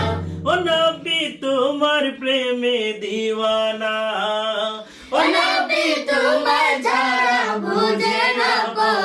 ও নবী তোমার প্রেমে দিওয়ানা, ও নবী তোমার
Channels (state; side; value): identical; both; correlation 1.00